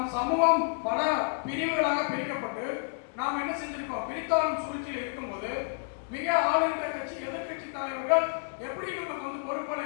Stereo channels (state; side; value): silent; right; digital silence